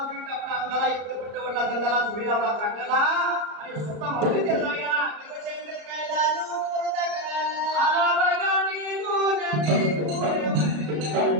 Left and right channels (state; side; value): late; left; 34 ms